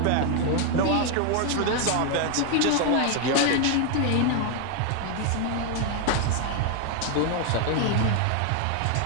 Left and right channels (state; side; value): different; both; correlation 0.01